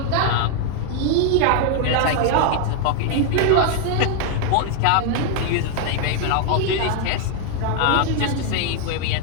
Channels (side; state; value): both; different; correlation 0.00